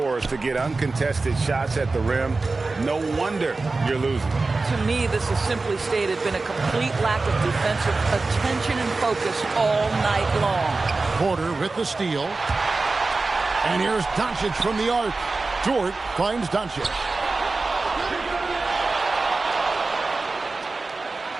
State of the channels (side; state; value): left; quieter; 3.6 dB